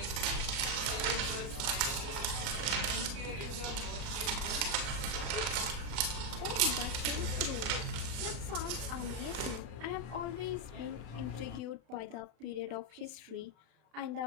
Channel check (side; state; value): left; late; 32 ms